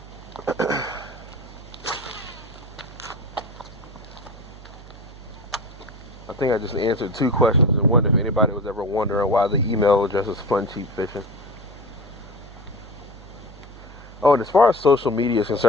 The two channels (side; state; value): right; noise; hum, 17 dB below the sound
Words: think I just answered 2 questions in one. If anybody was ever wondering why the email address is Fun Cheap Fishing. Oh, and as far as social media is